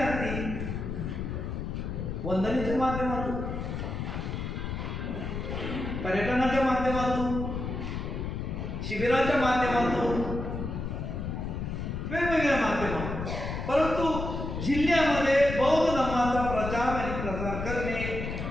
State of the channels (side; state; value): left; noise; rumble, 4 dB below the sound